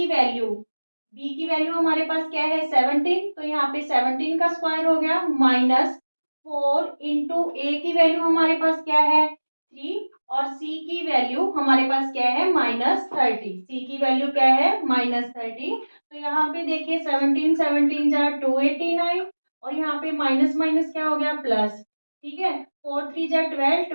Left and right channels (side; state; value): both; inverted; correlation -1.00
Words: वैल्यू हमारे पास क्या है 17, तो यहाँ पे 17 का स्क्वायर हो गया माइनस 4 इंटू ए की वैल्यू हमारे पास क्या है 3 और c की वैल्यू हमारे पास क्या है -30। c की वैल्यू क्या है -30। तो यहाँ पे देखिए 17 17 जा 289 और यहाँ पे माइनस माइनस क्या हो गया प्लस। ठीक है, 4 3 जा 12